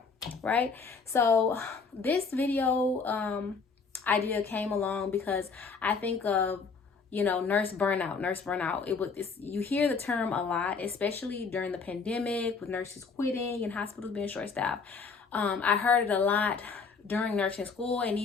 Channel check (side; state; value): right; quieter; 5.0 dB